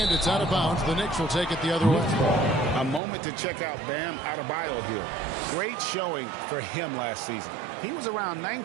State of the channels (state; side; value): drops out; left; at 3.0 s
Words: it's out of bounds. The Knicks will take it the other way. A moment to check out Bam Adebayo here. Great showing for him last season. He was around